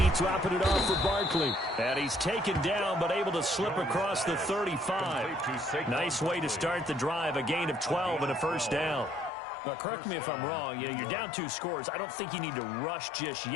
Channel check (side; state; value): right; drops out; at 9.3 s